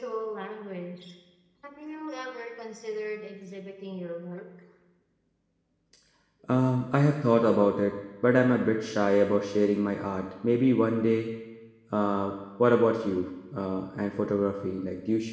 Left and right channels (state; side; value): identical; both; correlation 1.00